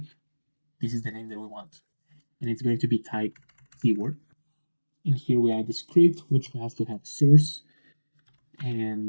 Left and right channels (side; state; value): both; inverted; correlation -1.00